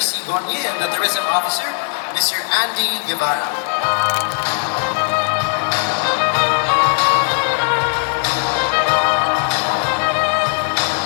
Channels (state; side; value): silent; right; 67 dB below the other